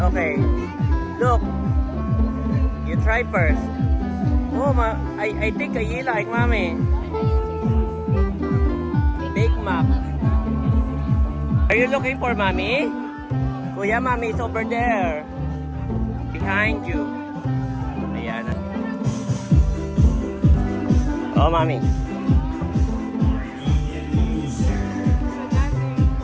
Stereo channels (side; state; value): both; identical; correlation 1.00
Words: Look. You try first. Oh, I think you like, Mami. Big Mac. Are you looking for Mommy? Kuya, Mommy is over there. Behind you. Ayan. Oh, Mommy.